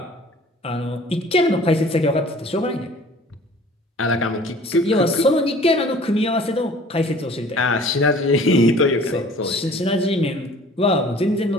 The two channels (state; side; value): normal; both; correlation 0.50